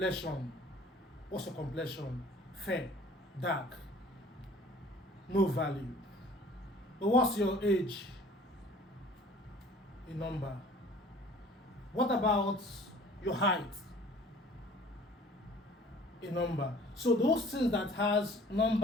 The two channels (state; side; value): normal; both; correlation 0.50